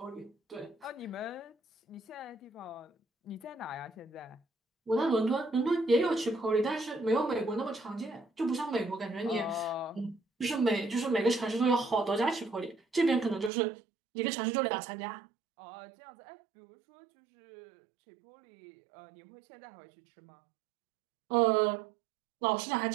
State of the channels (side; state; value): left; drops out; at 13.5 s